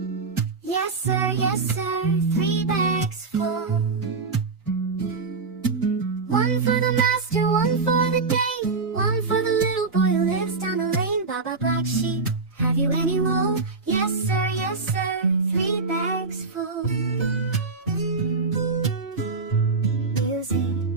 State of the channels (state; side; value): quieter; left; 4.3 dB